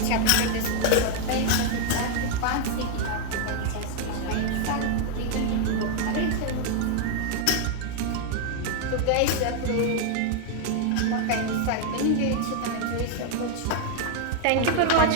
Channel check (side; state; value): both; different; correlation 0.00